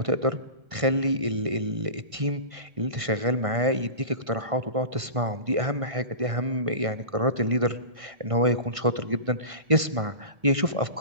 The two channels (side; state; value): left; late; 1.5 ms